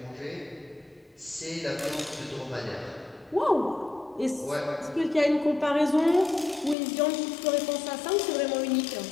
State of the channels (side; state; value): right; drops out; at 6.8 s